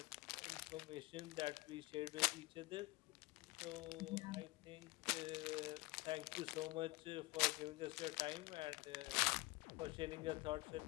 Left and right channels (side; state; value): right; quieter; 21.7 dB